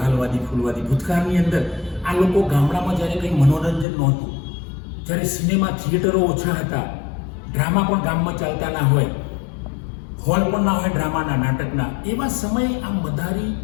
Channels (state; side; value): drops out; right; at 3.9 s